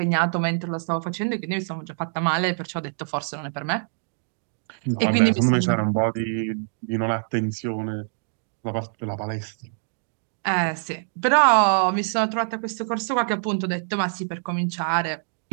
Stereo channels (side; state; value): left; silent; digital silence